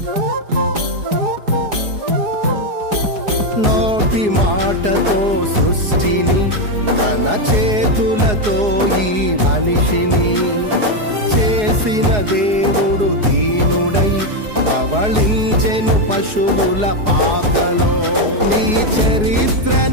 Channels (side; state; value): left; late; 4.8 ms